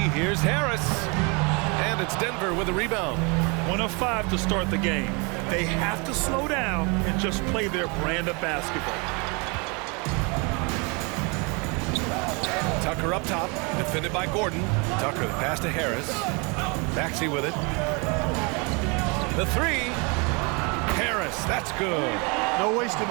Here's Harris. And it's Denver with a rebound. 1 of 5 to start the game. They have to slow down and just play their brand of basketball. Tucker up top, defended by Gordon. Tucker the pass to Harris. Maxey with it. The 3. Harris, that's good. No wasted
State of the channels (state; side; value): quieter; left; 31.0 dB